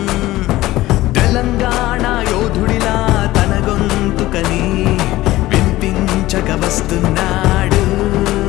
తెలంగాణ యోధుడిలా తన గొంతుకని వినిపించక వస్తున్నాడు,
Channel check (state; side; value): quieter; right; 17.0 dB